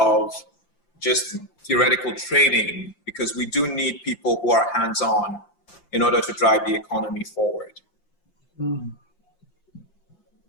just theoretical training, because we do need people who are hands-on in order to drive the economy forward. Mm.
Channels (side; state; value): right; late; 5.9 ms